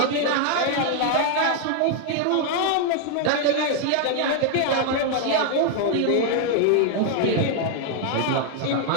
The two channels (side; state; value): both; different; correlation 0.00